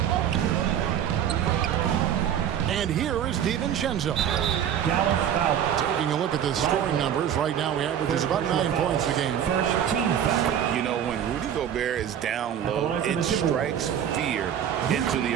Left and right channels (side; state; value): left; quieter; 9.5 dB